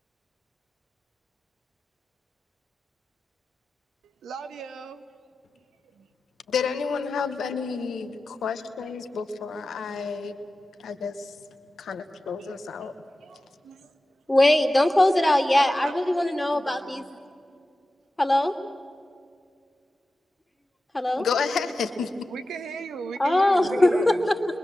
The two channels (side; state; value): both; normal; correlation 0.94